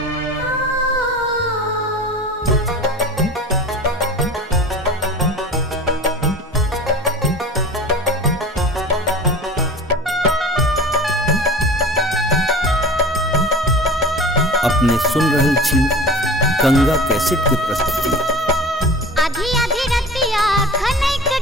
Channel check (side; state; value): both; normal; correlation 0.37